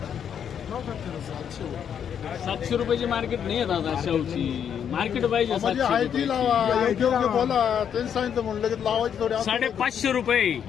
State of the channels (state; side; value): quieter; right; 8.3 dB